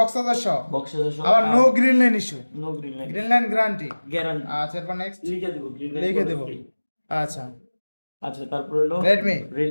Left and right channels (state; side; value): inverted; both; correlation -1.00